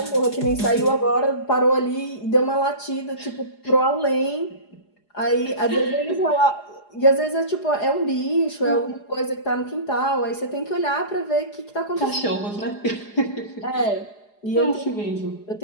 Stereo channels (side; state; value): right; late; 4.8 ms